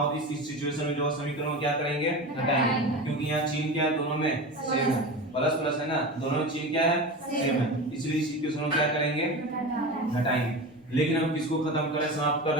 तो इस सिचुएशन में जो समीकरण क्या करेंगे घटाएंगे, क्योंकि यहाँ चिन्ह क्या है दोनों में सेम है, प्लस प्लस है ना, दोनों में चिन्ह क्या है सेम है, इसलिए इस इक्वेशन को क्या करेंगे घटाएंगे। लेकिन हम किसको खत्म कर रहे हैं समाप्त कर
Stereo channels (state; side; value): normal; both; correlation 0.27